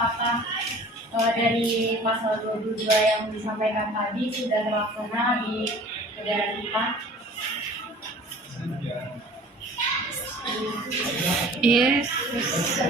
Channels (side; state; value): both; normal; correlation 0.46